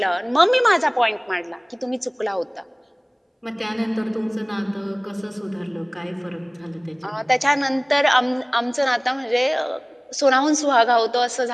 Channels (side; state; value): both; identical; correlation 1.00